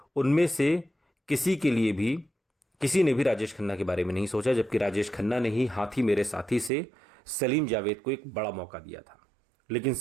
उनमें से किसी ने भी राजेश खन्ना के बारे में नहीं सोचा, जबकि राजेश खन्ना ने ही हाथी मेरे साथी से सलीम जावेद को एक बड़ा मौका दिया था। लेकिन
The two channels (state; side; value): drops out; left; at 6.7 s